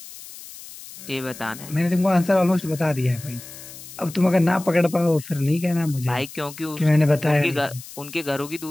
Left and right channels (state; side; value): noise; left; hiss, 16 dB below the sound